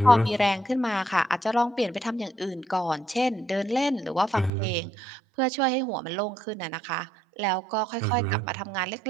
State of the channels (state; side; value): drops out; left; at 4.5 s